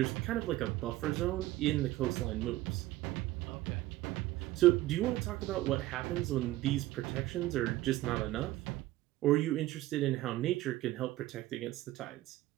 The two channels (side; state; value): left; quieter; 16.5 dB